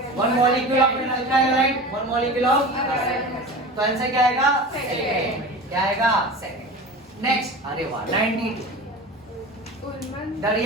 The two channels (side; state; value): both; normal; correlation 0.33